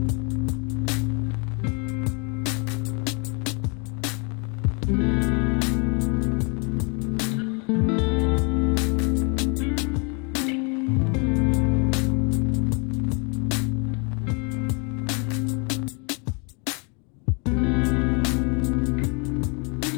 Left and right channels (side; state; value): right; quieter; 34.4 dB